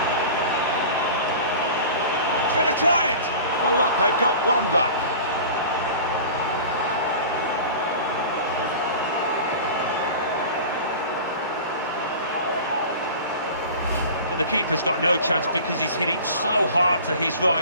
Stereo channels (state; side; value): inverted; both; correlation -0.38